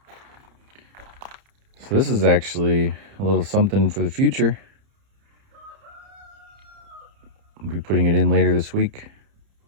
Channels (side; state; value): left; late; 30 ms